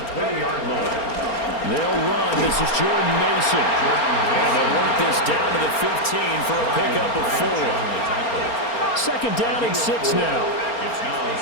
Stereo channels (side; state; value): right; late; 4.3 ms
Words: line. They'll run. This is Jordan Mason. And they'll work this down to the 15 for a pickup of 4. Second down and 6 now. It's now